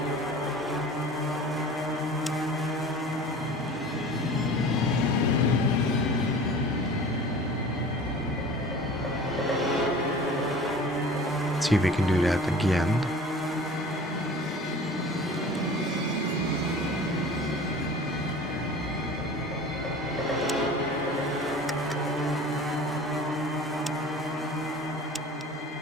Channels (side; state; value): both; normal; correlation 0.41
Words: See if we can do that again.